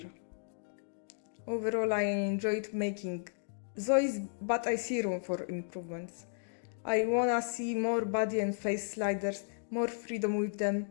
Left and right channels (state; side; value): silent; right; digital silence